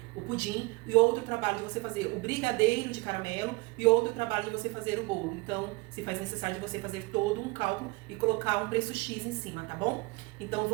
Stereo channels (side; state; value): left; quieter; 25.4 dB